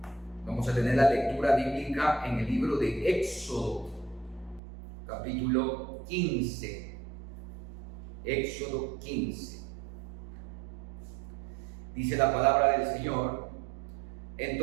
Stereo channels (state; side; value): drops out; left; at 4.6 s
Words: Vamos a tener la lectura bíblica en el libro de Éxodo, capítulo 15. Éxodo 15. Dice la palabra del Señor: